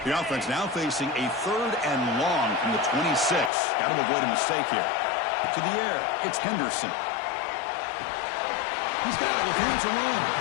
The offense now facing a 3rd and long from the 26. Got to avoid a mistake here. To the air, it's Henderson. He's got it with him to run.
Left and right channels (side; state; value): right; drops out; at 3.5 s